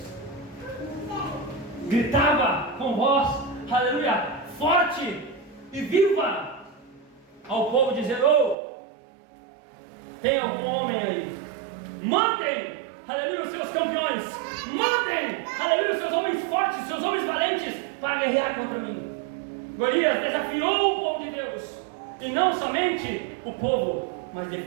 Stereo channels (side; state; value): left; drops out; at 8.6 s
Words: gritava com voz, aleluia, forte e viva ao povo, dizendo: tem algum homem aí? Mandem, aleluia, os seus campeões, mandem, aleluia, os seus homens fortes, seus homens valentes, para guerrear contra mim. Golias desafiou o povo de Deus, e não somente o povo, mas